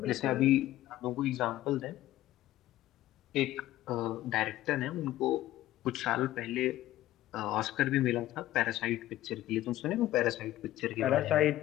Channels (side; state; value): right; quieter; 14.6 dB